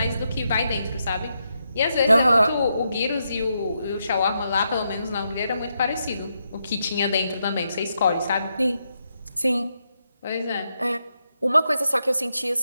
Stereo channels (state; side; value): inverted; both; correlation -0.82